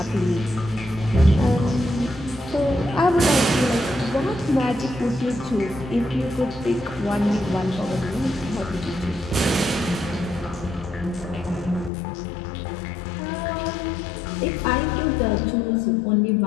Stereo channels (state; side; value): drops out; right; at 11.9 s